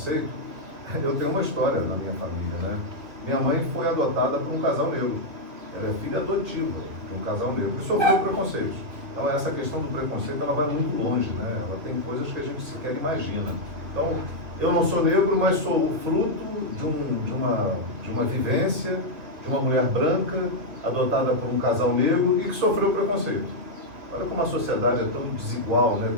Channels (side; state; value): left; late; 2.4 ms